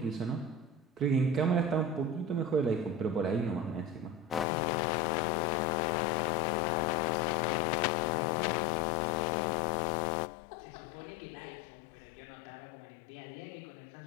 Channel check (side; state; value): right; drops out; at 4.5 s